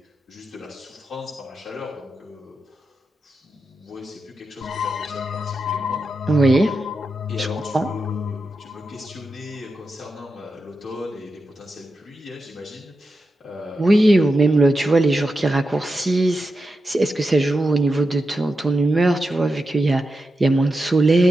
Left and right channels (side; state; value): both; normal; correlation 0.89